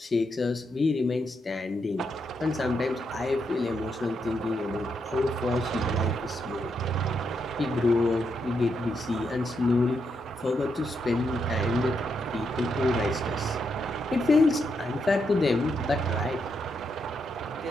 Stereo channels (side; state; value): both; normal; correlation 0.81